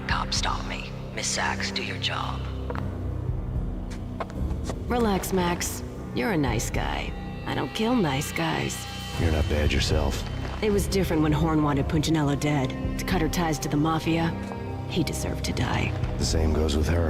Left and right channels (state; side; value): identical; both; correlation 1.00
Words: cop stop me. Miss Sachs, do your job. Relax, Max. You're a nice guy. I don't kill nice guys. You're not bad yourself. It was different when Horn wanted Punchinello dead. To cut her ties to the Mafia, he deserved to die. The same goes with